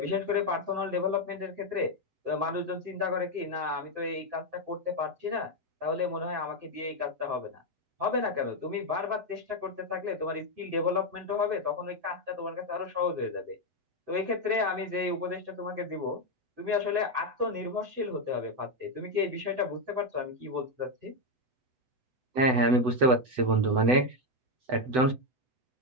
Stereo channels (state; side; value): late; left; 7.9 ms